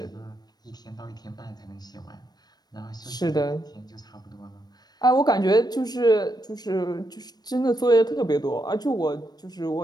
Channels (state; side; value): late; right; 0.19 ms